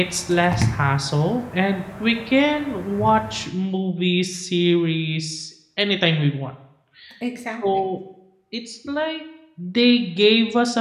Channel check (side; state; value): both; identical; correlation 1.00